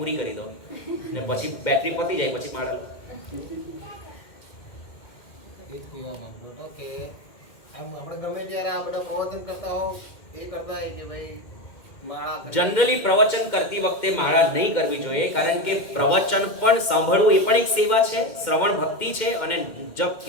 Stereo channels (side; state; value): right; late; 2.1 ms